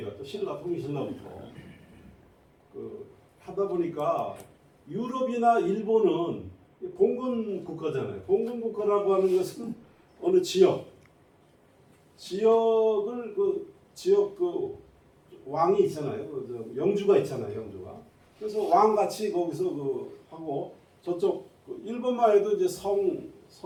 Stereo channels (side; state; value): both; identical; correlation 1.00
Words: 또 신라 통일신라부터 하다 보니까 유럽이나 일본은 봉건 국가잖아요. 봉건 국가라고 하는 것은 어느 지역을 지역 왕이 있잖아요. 영주가 있잖아요. 영주가. 그래서 왕같이 거기서 하고 저쪽 일본만 해도 이제 성의